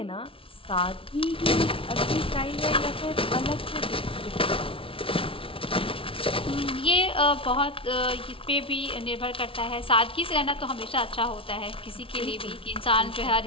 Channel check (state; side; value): late; right; 0.26 ms